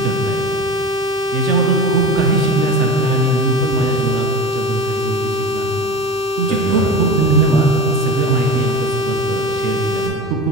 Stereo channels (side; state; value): right; noise; hum, 26 dB below the sound